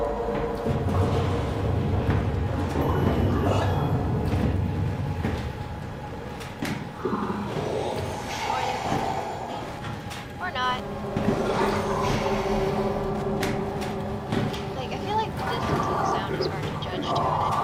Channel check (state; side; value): identical; both; correlation 1.00